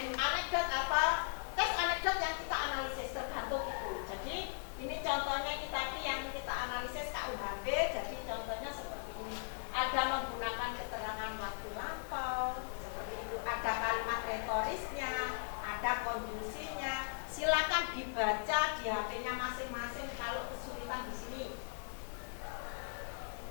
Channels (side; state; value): right; silent; digital silence